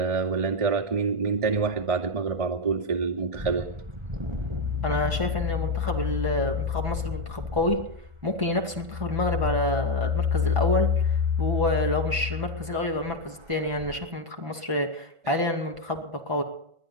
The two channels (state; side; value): late; left; 1.5 ms